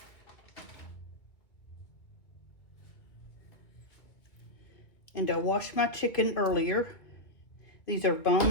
And I washed my chicken earlier. These are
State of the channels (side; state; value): right; late; 2.0 ms